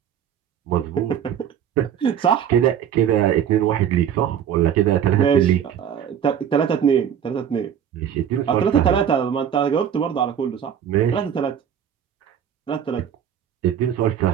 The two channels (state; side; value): quieter; left; 9.0 dB